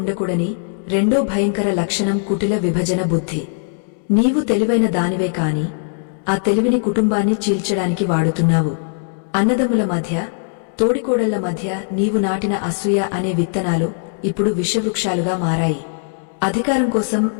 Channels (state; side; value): silent; right; 65 dB below the other